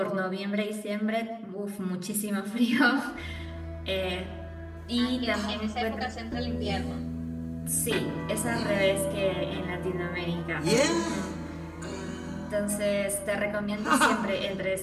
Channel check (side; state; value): both; identical; correlation 1.00